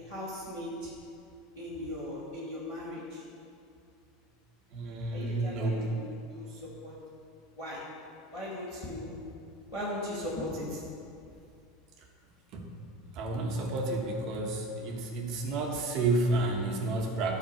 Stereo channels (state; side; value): normal; both; correlation 0.37